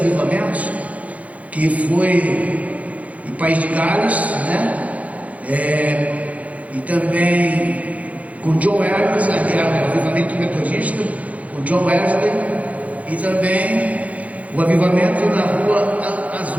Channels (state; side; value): late; left; 0.069 ms